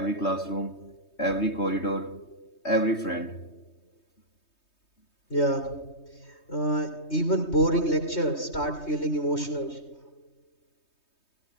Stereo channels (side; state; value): right; late; 3.2 ms